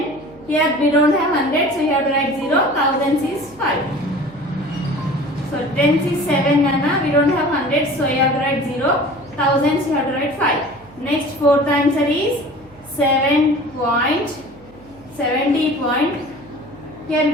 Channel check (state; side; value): noise; right; hum, 25 dB below the sound